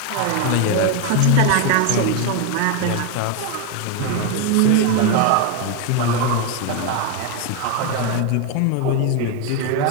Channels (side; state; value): both; different; correlation 0.02